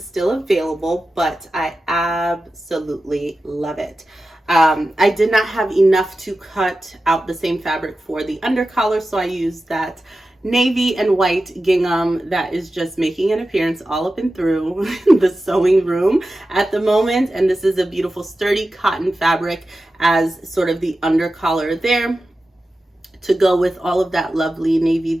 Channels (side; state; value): both; normal; correlation 0.93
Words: still available, but I absolutely love it. I did not have enough to cut out the same fabric for the undercollar, so I used that navy and white gingham that is just making an appearance all up and through the sewing room at the moment. And this is a beautiful sturdy cotton fabric as sort of the undercollar there to go with all of that lovely navy